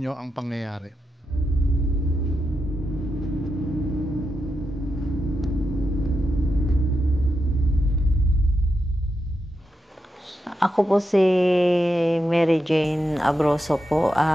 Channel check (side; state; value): both; normal; correlation 0.86